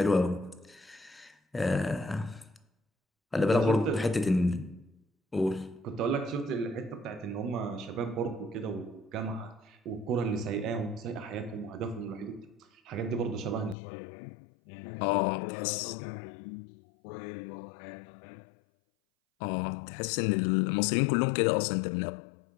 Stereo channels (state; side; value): drops out; right; at 13.8 s